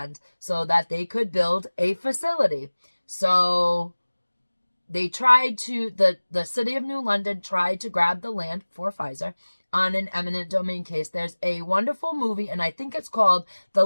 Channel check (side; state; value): both; inverted; correlation -1.00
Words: so that they could build a facility. So they tried to, the city of New London tried to grab the land for Pfizer on an eminent domain case. There's a wonderful movie, and I think it's called The